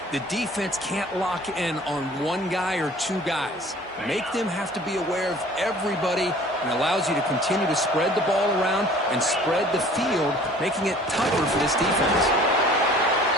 the defense can't lock in on one guy or two guys. Make them have to be aware of everybody, and allows you to continue to spread the ball around and spread the field, making it tougher for this defense.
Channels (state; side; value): normal; both; correlation 0.50